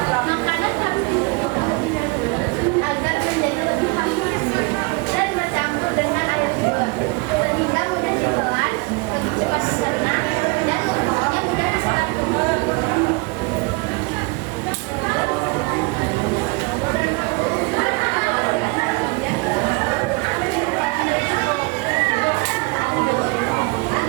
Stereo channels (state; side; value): quieter; left; 27.3 dB